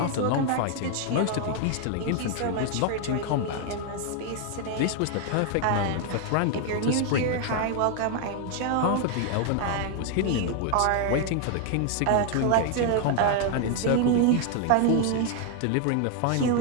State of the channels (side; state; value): both; different; correlation 0.00